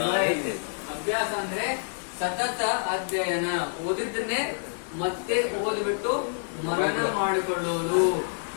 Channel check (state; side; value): silent; right; 60 dB below the other